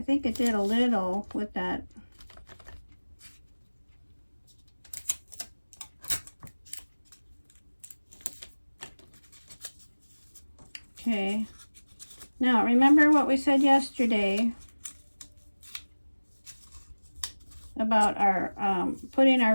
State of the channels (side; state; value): both; inverted; correlation -1.00